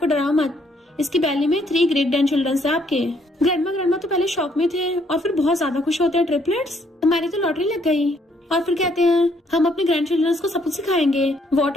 डराओ मत, इसकी बैली में 3 ग्रेट ग्रैंड चिल्ड्रन है आपके। ग्रैंडमा तो पहले शॉक में थे और फिर बहुत ज्यादा खुश होते हैं, ट्रिपलेट्स हमारी तो लॉटरी लग गई। और फिर कहते हैं हम अपने ग्रैंड चिल्ड्रन को सब कुछ सिखाएंगे,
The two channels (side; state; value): both; normal; correlation 0.68